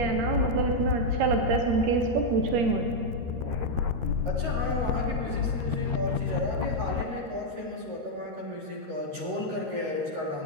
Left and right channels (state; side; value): late; left; 13 ms